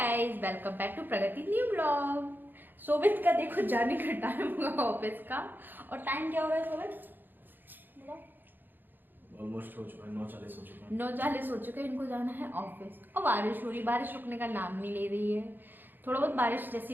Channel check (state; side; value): late; left; 0.092 ms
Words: welcome back to Pragati new blog. सोबित का देखो जाने का टाइम हुआ ऑफिस का। और टाइम क्या हो रहा है सोबित? ऑलमोस्ट हो चुका है, 9:40 हो चुका है। 9:40 हो चुके हैं, इनको जाना है ऑफिस। और बारिश हो रही, बारिश रुकने का नाम नहीं ले रही है। थोड़ा बहुत बारिश